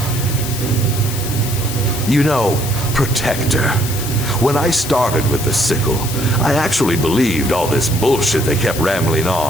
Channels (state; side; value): noise; left; hiss, 7 dB below the sound